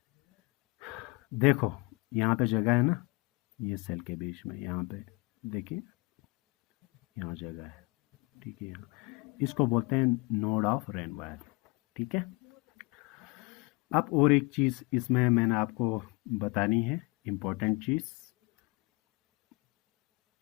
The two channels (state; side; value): quieter; right; 25.0 dB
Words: देखो यहाँ पे जगह है ना, ये सेल के बीच में, यहाँ पे देखिए यहाँ जगह है, ठीक है। यहाँ इसको बोलते हैं नोड ऑफ रेनवायर, ठीक है। अब और एक चीज़ इसमें मैंने आपको बतानी है, इम्पोर्टेंट चीज़,